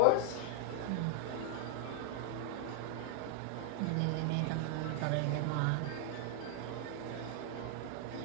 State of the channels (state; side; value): different; both; correlation 0.00